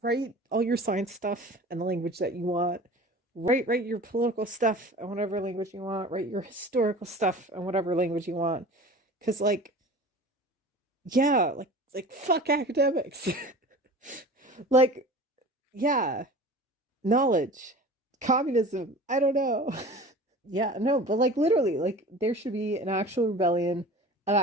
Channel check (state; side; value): normal; both; correlation 0.39